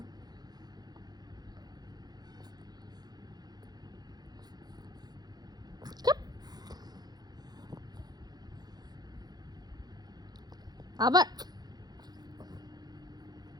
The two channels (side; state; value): left; late; 0.19 ms